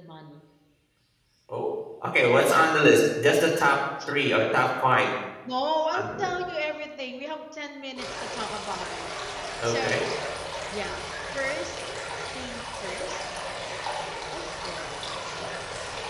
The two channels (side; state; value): both; identical; correlation 1.00